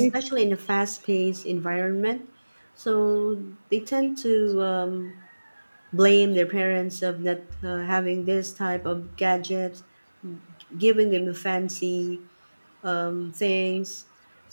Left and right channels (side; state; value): both; inverted; correlation -1.00